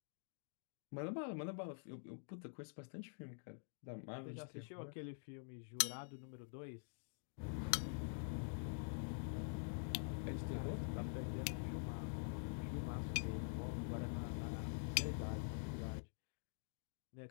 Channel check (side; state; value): right; silent; digital silence